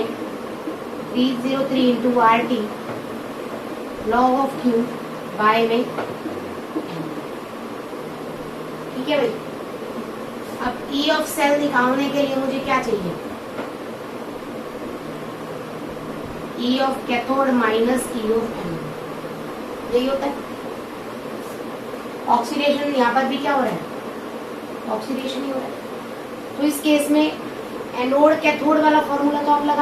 into RT log of Q by में n। ठीक है भाई। अब E ऑफ सेल निकालने के लिए मुझे क्या चाहिए, E of cathode minus E of anode. यही होता है। ऑक्सीडेशन यहाँ पर भी क्या हो रहा है, ऑक्सीडेशन ही हो रहा है। तो इस केस में एनोड कैथोड वाला फॉर्मूला तो आप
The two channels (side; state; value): both; identical; correlation 1.00